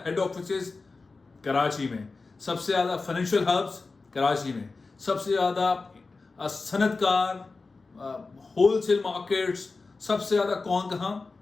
ہیڈ آفیسز کراچی میں, سب سے زیادہ فائنینشیل ہبس کراچی میں, سب سے زیادہ صنعت کار, ہول سیل مارکیٹس, سب سے زیادہ کون کہاں؟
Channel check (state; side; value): quieter; right; 3.9 dB